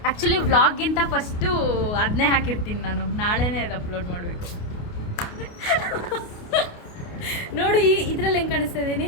ಆ್ಯಕ್ಚುಲಿ ವ್ಲಾಗ್ಗಿಂತ ಫಸ್ಟು ಅದನ್ನೇ ಹಾಕಿರ್ತೀನಿ ನಾನು, ನಾಳೆನೇ ಅದು ಅಪ್ಲೋಡ್ ಮಾಡಬೇಕು. ನೋಡಿ, ಇದರಲ್ಲಿ ಹೆಂಗೆ ಕಾಣಿಸ್ತಾ ಇದ್ದೀನಿ,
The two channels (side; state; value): right; late; 28 ms